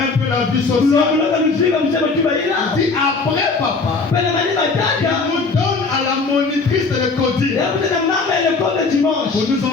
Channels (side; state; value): right; quieter; 4.2 dB